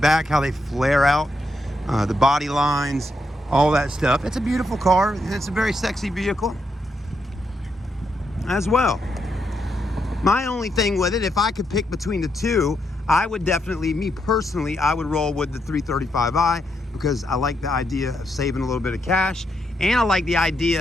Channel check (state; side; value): normal; both; correlation 0.80